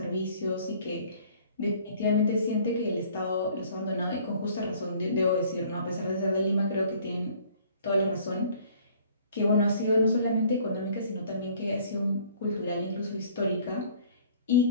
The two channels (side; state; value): both; inverted; correlation -0.55